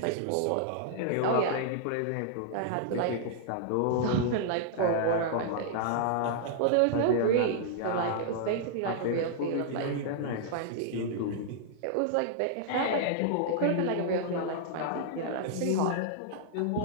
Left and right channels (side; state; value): both; different; correlation -0.01